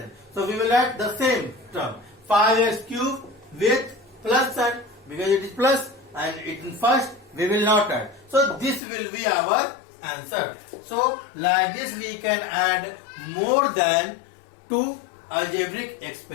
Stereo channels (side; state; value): right; drops out; at 8.8 s